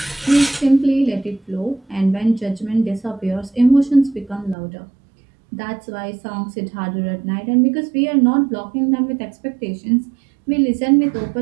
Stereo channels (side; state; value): left; drops out; at 4.5 s